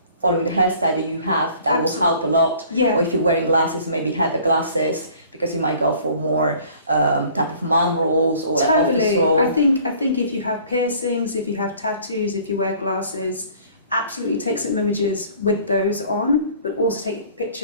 following the hairstyle that you have, that will help a lot. Or if you're wearing glasses, maybe have the glasses, because you might go for more type of mom roles or office role. I think if you have piercings, if you have tattoos, if you wear glasses, absolutely take some images with those on, but also take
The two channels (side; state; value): both; inverted; correlation -0.53